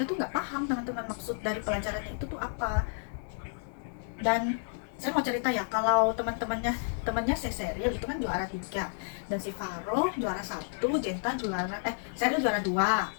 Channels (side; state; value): right; silent; 56 dB below the other